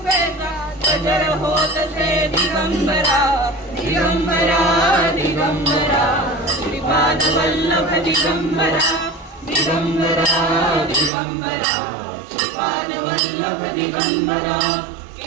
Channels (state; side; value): drops out; left; at 11.1 s